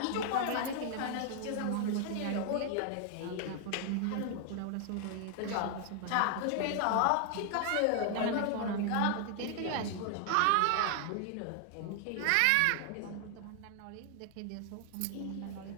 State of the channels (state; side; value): different; both; correlation 0.00